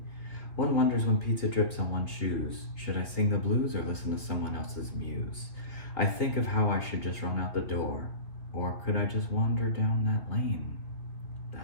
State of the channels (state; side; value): late; right; 2.7 ms